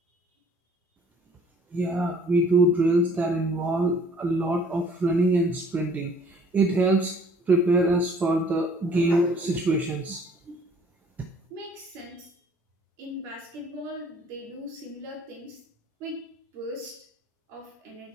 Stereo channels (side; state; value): both; normal; correlation 0.56